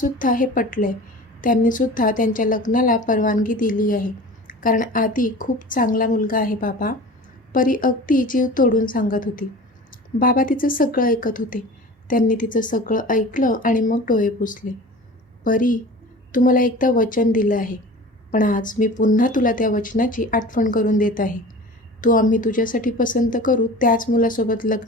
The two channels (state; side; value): normal; both; correlation 0.38